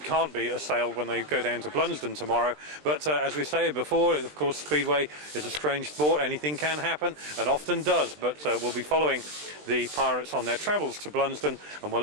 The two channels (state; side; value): late; left; 20 ms